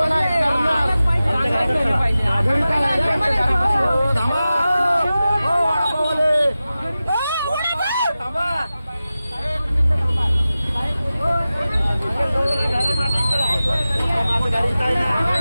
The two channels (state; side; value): inverted; both; correlation -0.95